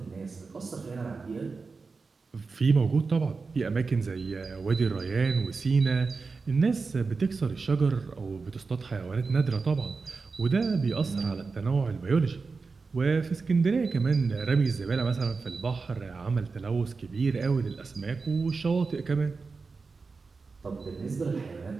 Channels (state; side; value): quieter; left; 4.4 dB